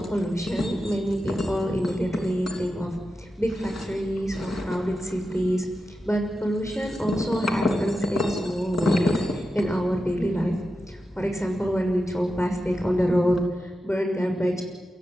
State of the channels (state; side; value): normal; both; correlation 0.90